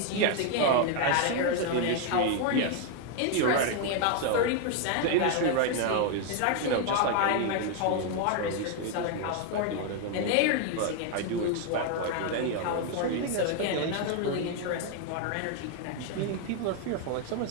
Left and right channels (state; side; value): different; both; correlation 0.01